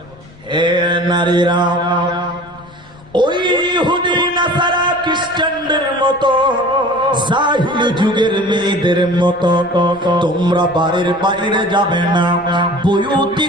হে নারীরা, ওই ইহুদি নাসারা খ্রিস্টানদের মতো, জাহিলি যুগের মেয়েদের মতো তোমরা বাড়ির বাইরে যাবে না। বয়ুতি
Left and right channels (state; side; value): noise; left; rumble, 24 dB below the sound